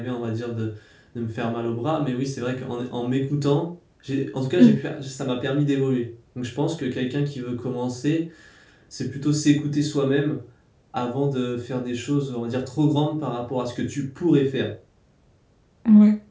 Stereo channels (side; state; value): both; identical; correlation 1.00